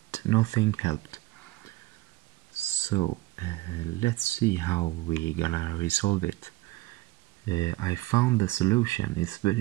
nothing helped. So let's see how we gonna resolve it. I found the solution.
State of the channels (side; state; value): left; quieter; 19.6 dB